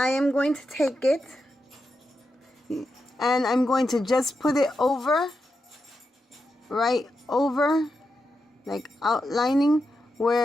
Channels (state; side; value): normal; both; correlation 0.87